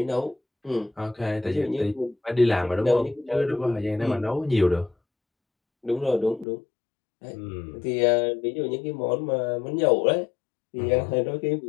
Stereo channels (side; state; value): right; drops out; at 6.5 s